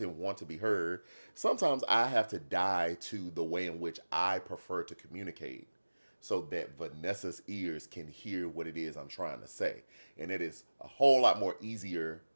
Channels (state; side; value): inverted; both; correlation -1.00